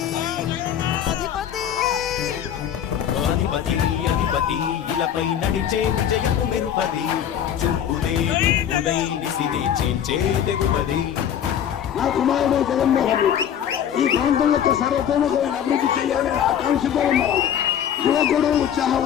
అధిపతి ఇలపై నడిచే విజయము మెరుపది చూపులే నిప్పులై నిసినే చేర్చే తెగువది. నా కుమారుడు జగన్మోహన్ రెడ్డి ఈ ప్రాంతం యొక్క సర్వతోముఖమైన అభివృద్ధి చేయాలని ఆకాంక్షతో ఉన్నాడు. యువకుడు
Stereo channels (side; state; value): right; quieter; 9.4 dB